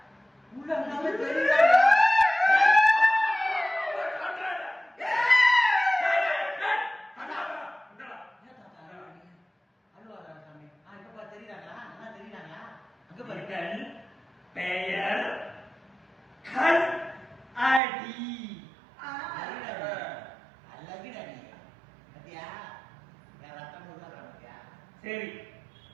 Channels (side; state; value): left; drops out; at 17.8 s